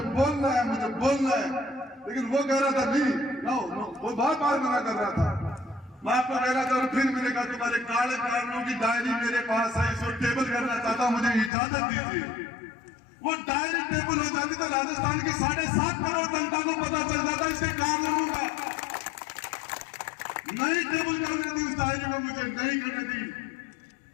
बोलना है, मुझे बोलना है, लेकिन वो कह रहा था नहीं, नो, वो बार बार मना कर रहा था। मैं आपको कह रहा था, और फिर मैंने कहा तुम्हारे काले कारणों की डायरी मेरे पास है, इसको टेबल करना चाहता, मुझे इजाजत दीजिए। वो डायरी टेबल हो जाती तो राजस्थान की 7.5 करोड़ जनता को पता चल जाता इसके कारणों का। नहीं टेबल करने दी उस डायरी में, मुझे नहीं करने दी।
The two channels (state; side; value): drops out; right; at 11.5 s